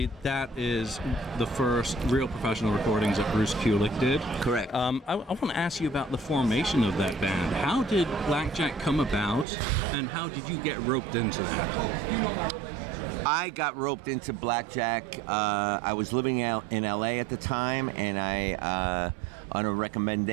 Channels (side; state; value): left; drops out; at 9.5 s